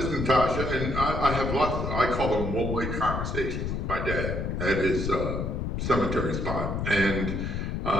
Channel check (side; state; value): left; noise; rumble, 2 dB below the sound